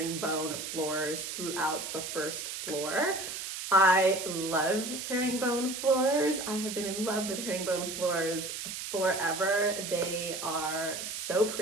floors throughout the 1st floor. I love herringbone floors. I have been in love with herringbone floors forever. They are so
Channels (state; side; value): noise; right; hiss, 6 dB below the sound